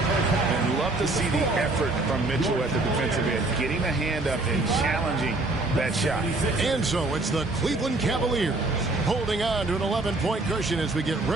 And love to see the effort from Mitchell at the defensive end, getting a hand up and challenging that shot. And so it's the Cleveland Cavaliers holding on to an 11-point cushion as we get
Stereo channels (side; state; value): left; quieter; 3.0 dB